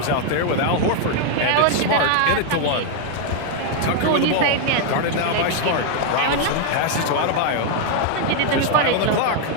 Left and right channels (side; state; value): both; different; correlation 0.00